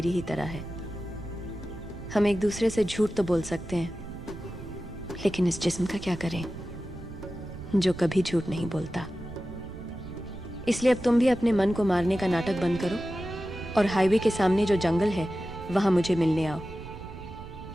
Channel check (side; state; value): right; noise; rumble, 13 dB below the sound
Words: ही तरह है। हम एक दूसरे से झूठ तो बोल सकते हैं, लेकिन इस जिस्म का क्या करें जो कभी झूठ नहीं बोलता। इसलिए अब तुम भी अपने मन को मारने का नाटक बंद करो और हाईवे के सामने जो जंगल है वहां मुझे मिलने आओ।